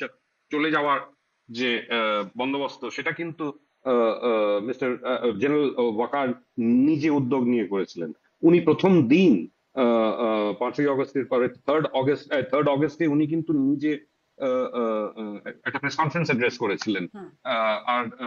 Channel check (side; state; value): both; identical; correlation 1.00